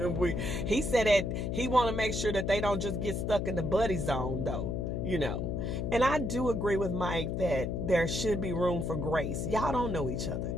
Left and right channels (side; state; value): left; noise; hum, 2 dB below the sound